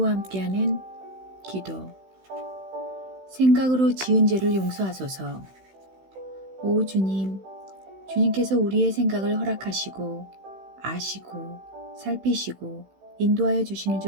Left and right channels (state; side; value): late; left; 16 ms